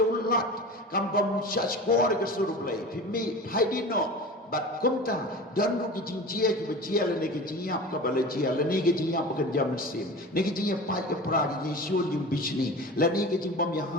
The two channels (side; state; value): both; normal; correlation 0.34